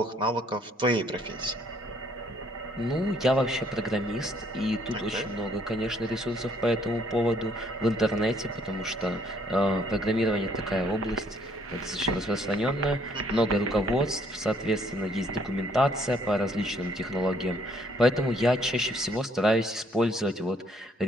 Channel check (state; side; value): normal; both; correlation 0.65